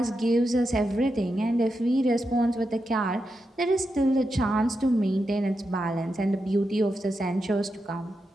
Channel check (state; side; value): normal; both; correlation 0.87